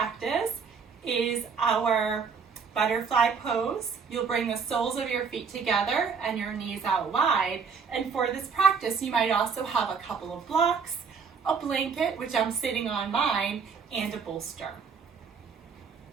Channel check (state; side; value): quieter; left; 5.8 dB